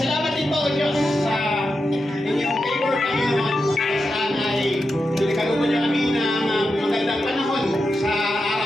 din po, O Diyos, sa inyong favor kami naman. Saan ay pinagkalooban niyo kami ng magandang panahon sa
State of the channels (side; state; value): both; normal; correlation 0.88